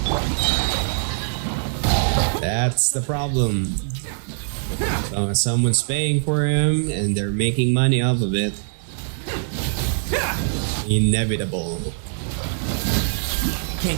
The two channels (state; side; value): silent; left; digital silence